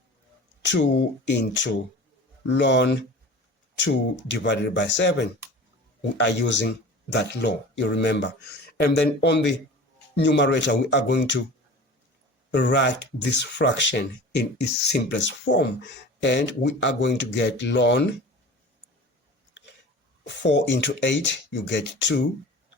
2 into ln 2 divided by 7. We are using that law, you remember. And then on the numerator, we are going to write this fraction in its simplest form, and we are going to get ln 4 into 8, you get 2.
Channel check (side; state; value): both; normal; correlation 0.38